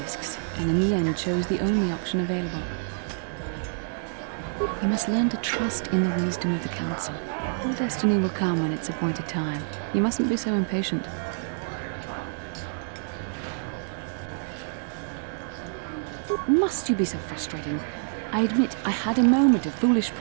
and in the end chose the only option available. You must learn to trust in the wisdom of the Council. Your destiny will come when it's appointed time. You mustn't be so impatient. Must you be so frustrating? I admit I had a moment of foolish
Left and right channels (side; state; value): left; silent; digital silence